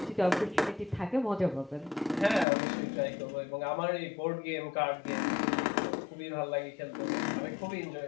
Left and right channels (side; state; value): right; drops out; at 2.5 s